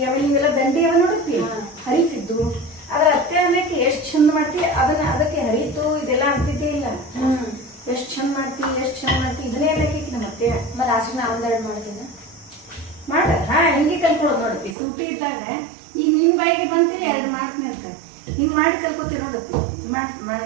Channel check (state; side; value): drops out; left; at 14.8 s